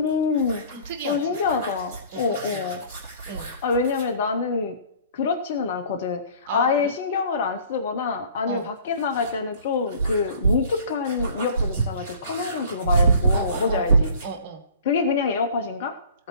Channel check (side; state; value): both; inverted; correlation -0.48